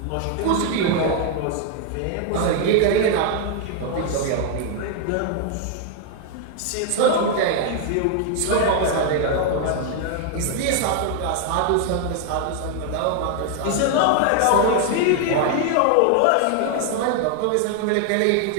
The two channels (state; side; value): different; both; correlation 0.00